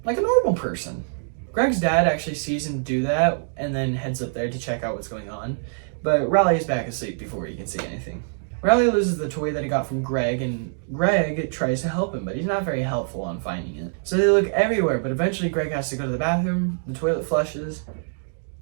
Like a normal person. Greg's dad actually sees him do that and then heads up there to check out what's going on. But Riley is back asleep before he can see anything. Riley loses the toy that he got from Greg, and Greg tries to help him, but he's not very helpful on finding it. So they look everywhere, but eventually Greg has to go to the bathroom, the toilet flushes,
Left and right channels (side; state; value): left; silent; digital silence